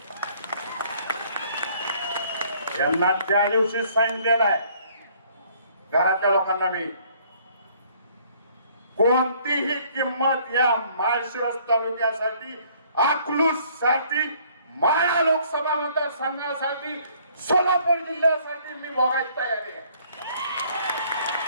यांना त्या दिवशी सांगितलेलं आहे घरातल्या लोकांना, मी कोणतीही किंमत या माळशिरस तालुक्यासाठी, अकलूज साठी, माळा लोकसभा मतदारसंघासाठी, सोलापूर जिल्ह्यासाठी मी भोगायची तयारी आहे.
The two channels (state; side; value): inverted; both; correlation -0.61